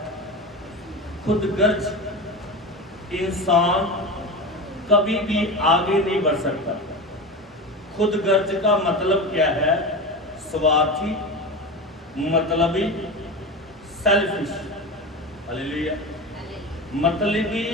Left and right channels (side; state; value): both; normal; correlation 0.25